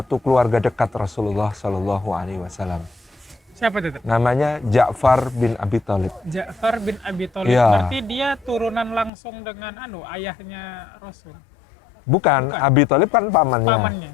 keluarga dekat Rasulullah Shallallahu Alaihi Wasallam. Siapa itu, Tat? Namanya Ja'far bin Abi Thalib. Ja'far bin Abi Thalib. Iya. Berarti dia turunan langsung dengan ayahnya Rasul. Bukan, Bukan. Abi Thalib kan pamannya. Pamannya.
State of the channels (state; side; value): drops out; right; at 9.1 s